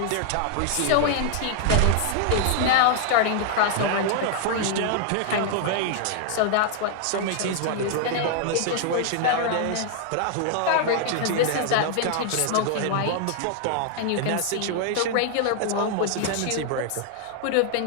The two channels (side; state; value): both; different; correlation 0.00